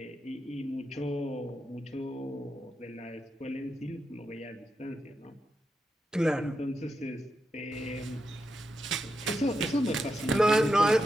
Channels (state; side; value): normal; both; correlation 0.86